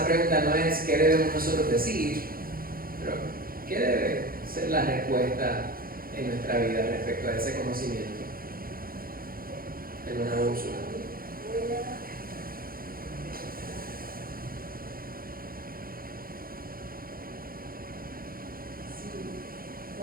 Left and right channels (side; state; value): left; late; 0.42 ms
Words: pregunta no es qué debemos nosotros decir, pero ¿qué debe ser la respuesta en nuestra vida respecto a ese conocimiento? En una Úrsula.